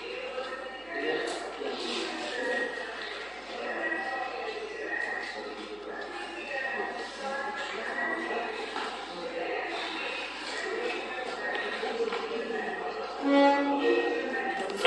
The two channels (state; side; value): noise; right; hum, 26 dB below the sound